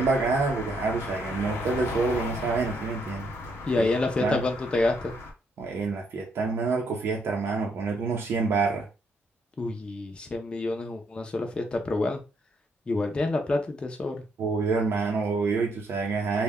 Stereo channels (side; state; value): both; normal; correlation 0.73